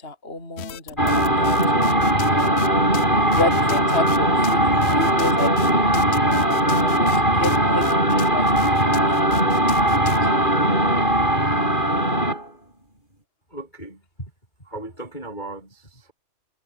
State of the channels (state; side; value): late; right; 3.0 ms